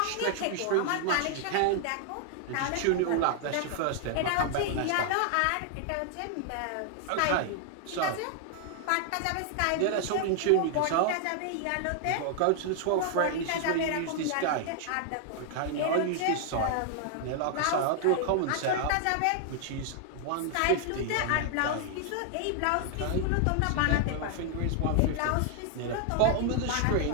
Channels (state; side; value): different; both; correlation 0.00